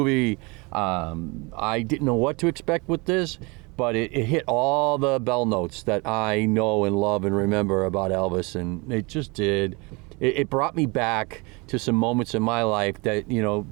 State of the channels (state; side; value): quieter; left; 27.5 dB